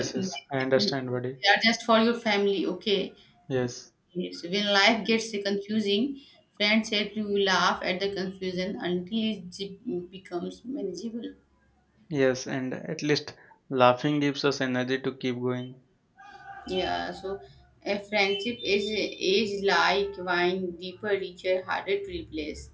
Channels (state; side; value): identical; both; correlation 1.00